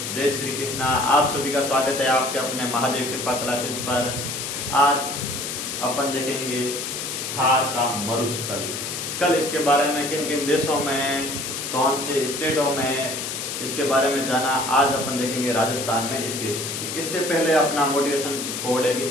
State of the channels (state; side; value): noise; left; hiss, 5 dB below the sound